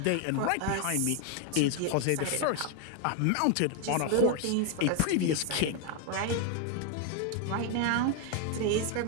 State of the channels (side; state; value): both; different; correlation 0.01